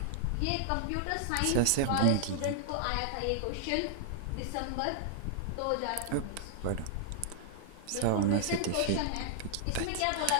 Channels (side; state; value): both; different; correlation -0.01